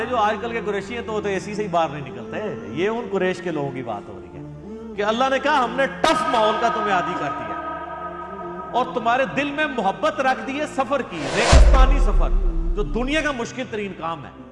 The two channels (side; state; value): both; identical; correlation 1.00